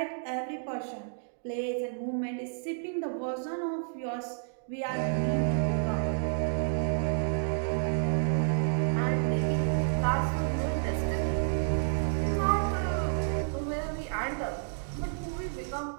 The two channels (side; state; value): left; silent; digital silence